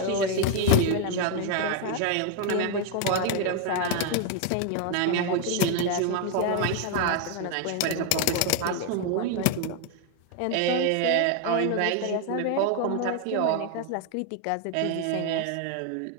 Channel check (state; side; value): different; both; correlation 0.01